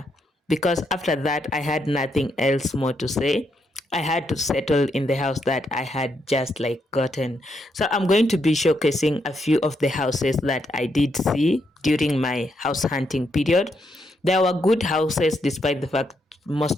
because after that I had nothing else more to say. I had to settle in the house that I had just gotten. So I'm going to be showcasing a few of the houses that I did see during my house hunting period. There were good houses, despite the fact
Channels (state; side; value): normal; both; correlation 0.79